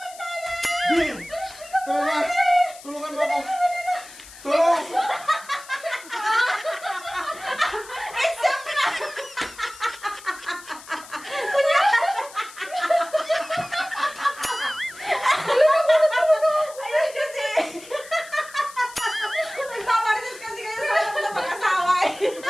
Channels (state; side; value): noise; left; hiss, 18 dB below the sound